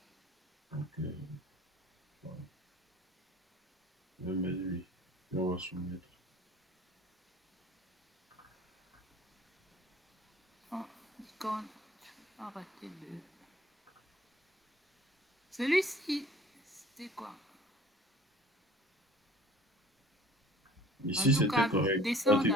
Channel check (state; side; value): normal; both; correlation 0.49